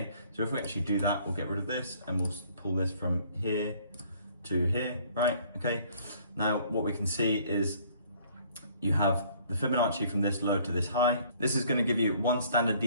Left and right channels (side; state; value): both; inverted; correlation -0.59